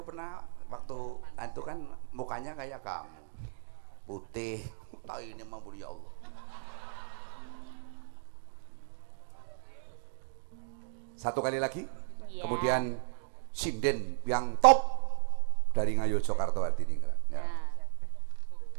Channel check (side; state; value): left; silent; digital silence